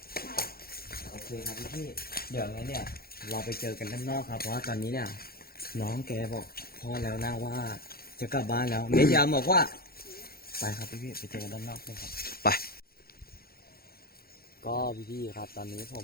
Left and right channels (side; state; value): right; late; 0.44 ms